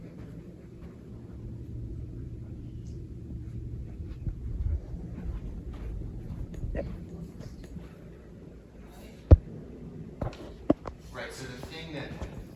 Right, so the thing that...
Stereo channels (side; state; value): both; identical; correlation 1.00